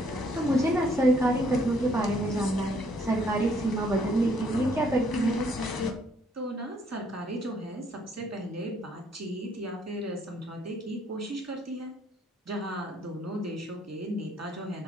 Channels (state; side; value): normal; both; correlation 0.66